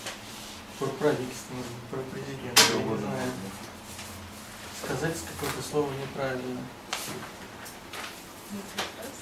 Про правительство, может быть, про президента, я не знаю. Сказать какое-то слово неправильно.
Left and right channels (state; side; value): identical; both; correlation 1.00